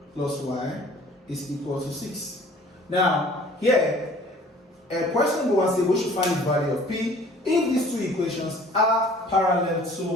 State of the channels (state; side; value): normal; both; correlation 0.51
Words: plus y is equal to 6. Now, here, a question will say we should find the value of p if these two equations are parallel